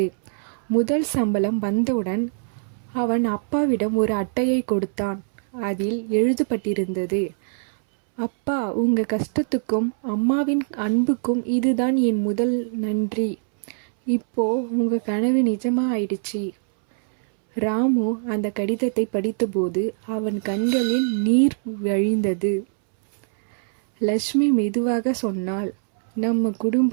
முதல் சம்பளம் வந்தவுடன் அவன் அப்பாவிடம் ஒரு அட்டையை கொடுத்தான். அதில் எழுதப்பட்டிருந்தது, அப்பா, உங்க கஷ்டத்துக்கும் அம்மாவின் அன்புக்கும் இதுதான் என் முதல் நன்றி. இப்போ உங்க கனவு நிஜமா ஆயிடுச்சு. ராமு அந்த கடிதத்தை படித்தபோது அவன் கண்களில் நீர் வழிந்தது. லட்சுமி மெதுவாக சொன்னாள், நம்ம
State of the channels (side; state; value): left; silent; 64 dB below the other